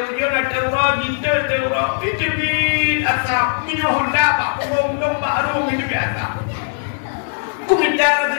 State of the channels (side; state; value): right; silent; 61 dB below the other